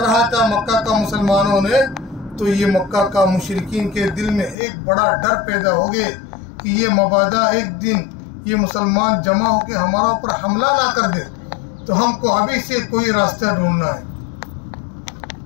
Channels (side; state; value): right; drops out; at 4.5 s